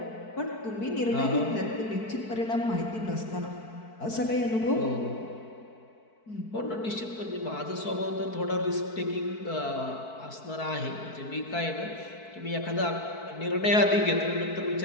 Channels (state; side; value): late; right; 4.6 ms